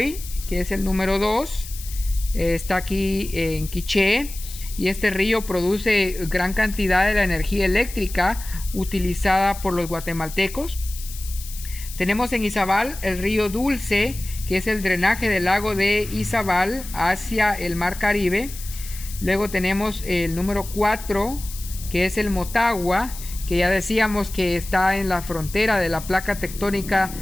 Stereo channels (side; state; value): left; noise; hiss, 13 dB below the sound